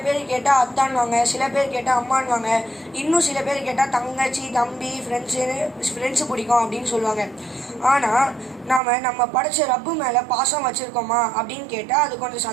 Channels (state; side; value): drops out; left; at 8.8 s